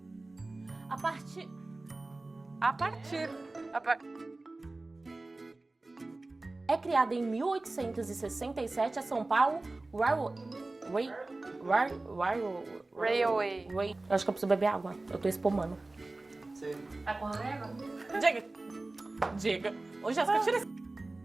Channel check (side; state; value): left; quieter; 3.1 dB